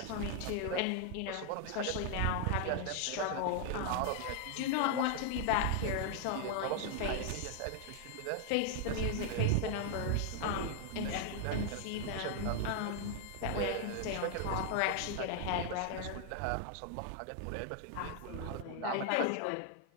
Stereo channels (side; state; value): both; different; correlation 0.00